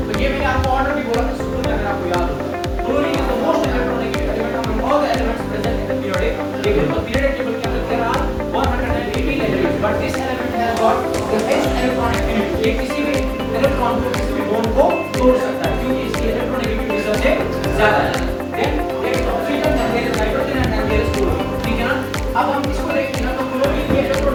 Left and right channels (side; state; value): both; identical; correlation 1.00